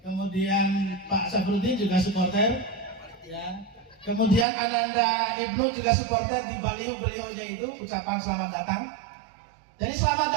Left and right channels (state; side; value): drops out; left; at 4.5 s